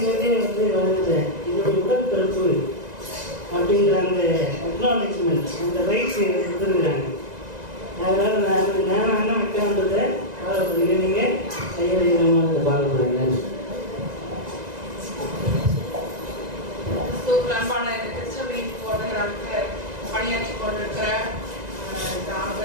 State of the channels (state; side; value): late; left; 1.9 ms